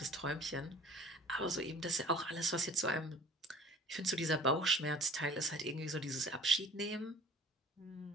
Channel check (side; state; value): both; normal; correlation 0.48